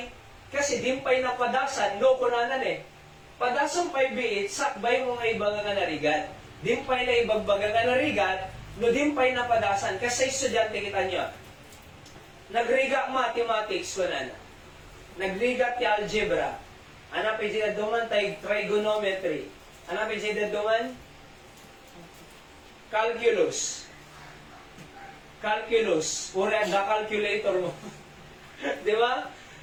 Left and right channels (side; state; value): both; identical; correlation 1.00